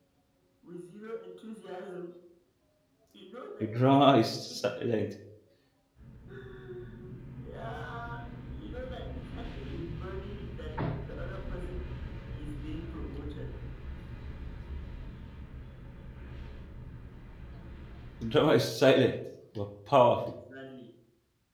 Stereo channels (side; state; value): both; identical; correlation 1.00